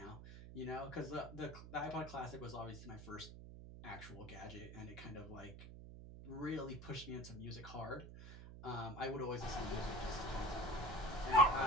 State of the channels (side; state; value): right; noise; hum, 13 dB below the sound